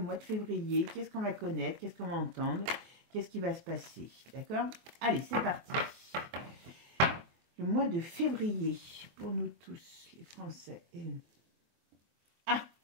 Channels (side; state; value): left; late; 24 ms